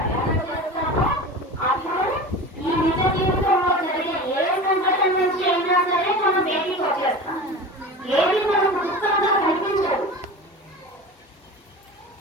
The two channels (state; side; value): normal; both; correlation 0.33